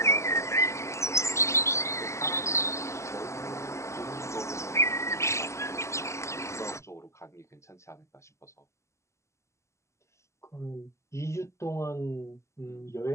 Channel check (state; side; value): late; right; 0.14 ms